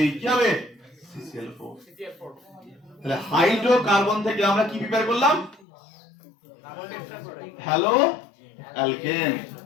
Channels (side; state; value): right; drops out; at 5.7 s